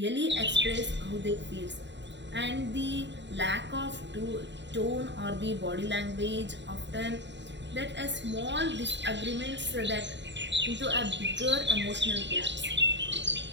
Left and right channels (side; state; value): left; late; 0.52 ms